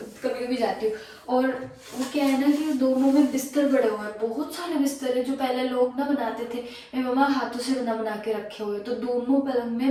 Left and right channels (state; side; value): identical; both; correlation 1.00